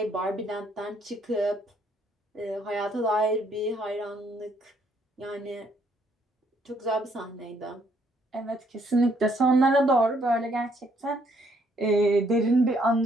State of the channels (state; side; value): normal; both; correlation 0.69